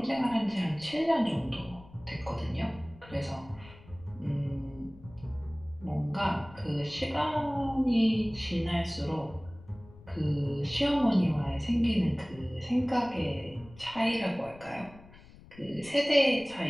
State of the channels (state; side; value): noise; left; rumble, 21 dB below the sound